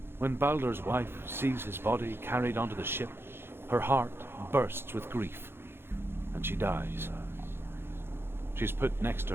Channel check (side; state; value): left; late; 0.11 ms